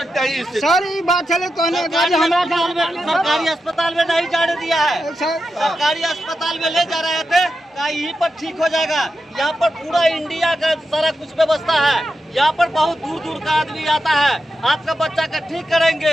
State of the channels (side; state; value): both; normal; correlation 0.89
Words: हैं सर, ये बात चले सरकारी अस्पताल में नहीं जाने दिया है। सरकारी अस्पताल में ले जा रहे थे, कहा यहीं पर ठीक हो जाएगा। यहाँ पर पूरा इंडिया का सारा कुछ व्यवस्था है। यहाँ पर बहुत दूर दूर का आदमी आता है, आपका बच्चा का ठीक